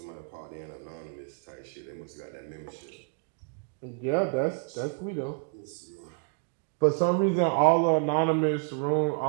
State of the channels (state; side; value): quieter; left; 39.0 dB